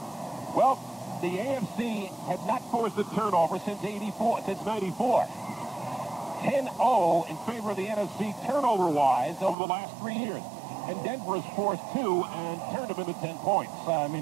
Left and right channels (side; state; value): left; drops out; at 9.6 s